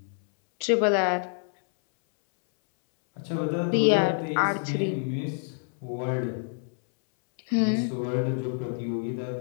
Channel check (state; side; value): silent; right; 60 dB below the other